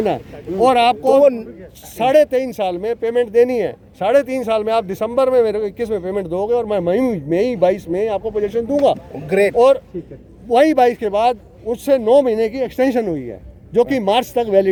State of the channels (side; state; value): both; identical; correlation 1.00